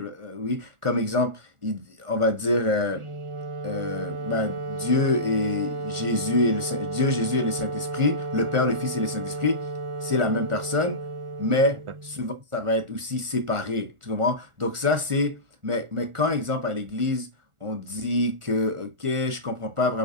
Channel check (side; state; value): left; late; 1.4 ms